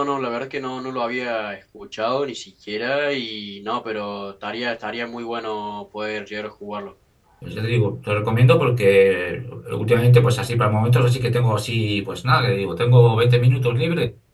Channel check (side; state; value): both; identical; correlation 1.00